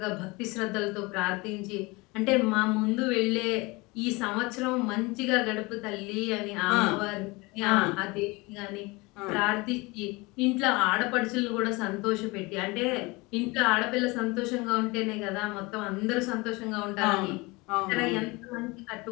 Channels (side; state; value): right; quieter; 24.4 dB